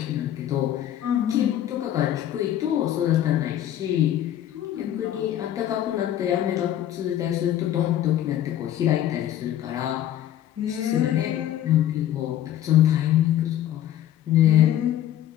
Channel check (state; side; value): quieter; right; 11.8 dB